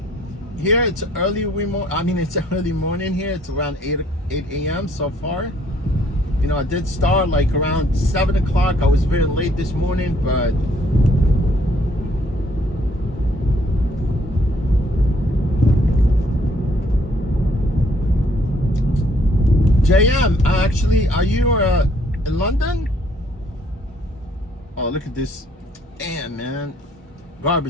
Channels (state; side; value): normal; both; correlation 0.64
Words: Here it's early it's early morning here. It's around 8 a.m. so far. You know, I did start like around 7 o'clock. I was very late this morning, but JM, actually, are you in London? Oh, look at this. Damn, man.